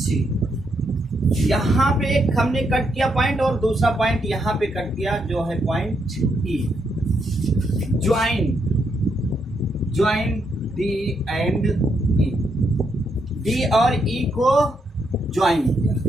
यहाँ पे एक हमने कट किया पॉइंट और दूसरा पॉइंट यहाँ पे कट किया जो है point E। Join D and E, D और E को ज्वाइन किया।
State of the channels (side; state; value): both; normal; correlation 0.78